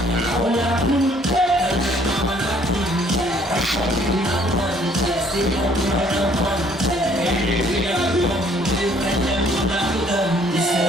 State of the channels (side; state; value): both; normal; correlation 0.61